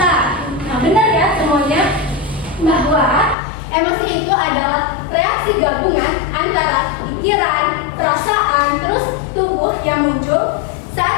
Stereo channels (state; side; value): drops out; right; at 3.4 s